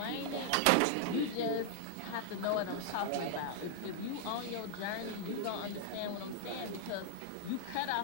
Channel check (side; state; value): both; different; correlation -0.01